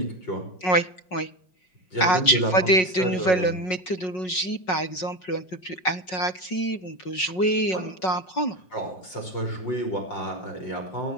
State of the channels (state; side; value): late; right; 5.4 ms